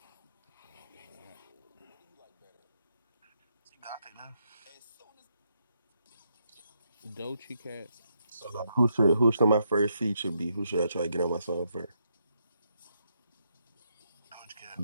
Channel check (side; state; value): both; inverted; correlation -0.78